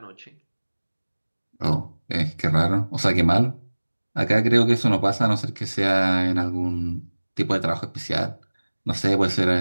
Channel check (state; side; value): inverted; both; correlation -1.00